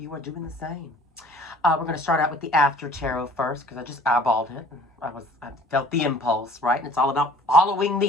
are doing the same. We're going to start out with the after tarot first, because I just eyeballed it. And I felt the impulse, right? And it's all about following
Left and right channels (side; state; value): both; normal; correlation 0.51